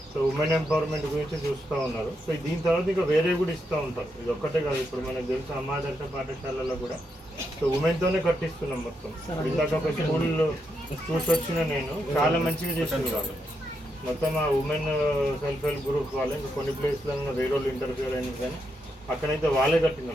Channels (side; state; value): both; normal; correlation 0.82